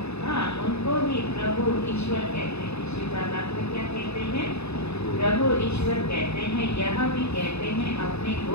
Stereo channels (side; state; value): right; late; 0.80 ms